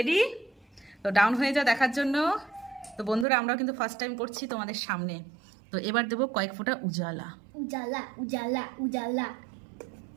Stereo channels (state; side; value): drops out; left; at 3.2 s